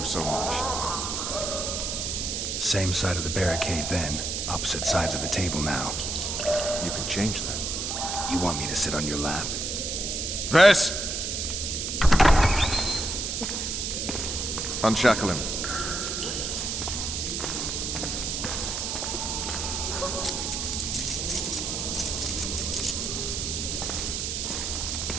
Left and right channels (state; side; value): noise; right; hiss, 2 dB below the sound